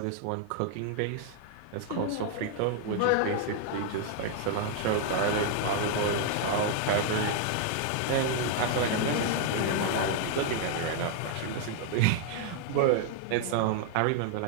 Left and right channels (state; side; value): different; both; correlation 0.00